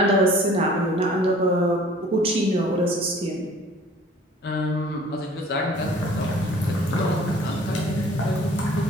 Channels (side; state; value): both; normal; correlation 0.51